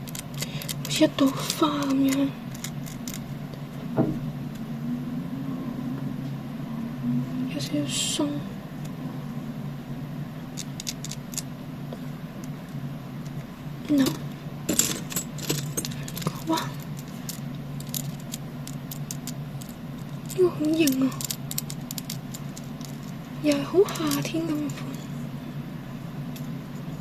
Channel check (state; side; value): identical; both; correlation 1.00